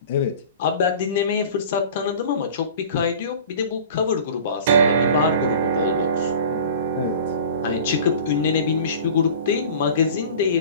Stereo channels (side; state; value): both; inverted; correlation -0.41